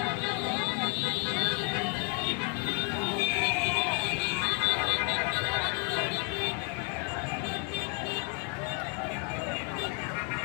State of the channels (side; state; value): right; quieter; 36.2 dB